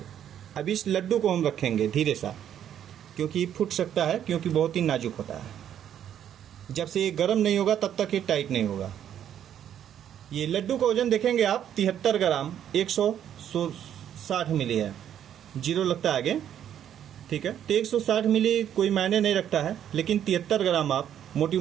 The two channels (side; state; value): left; quieter; 10.0 dB